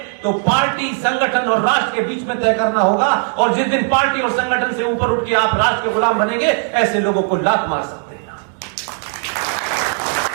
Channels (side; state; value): left; silent; 56 dB below the other